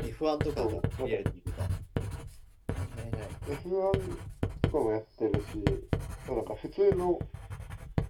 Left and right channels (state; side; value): identical; both; correlation 1.00